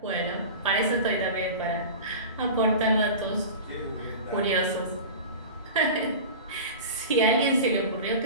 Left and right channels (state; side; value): inverted; both; correlation -0.33